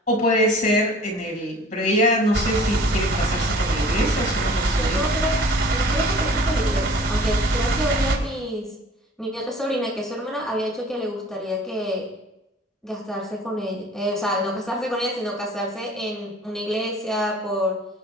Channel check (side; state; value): both; normal; correlation 0.48